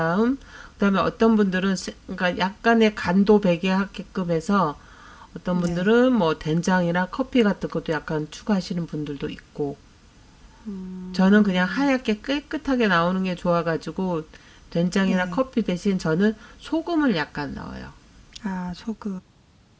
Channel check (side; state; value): both; identical; correlation 1.00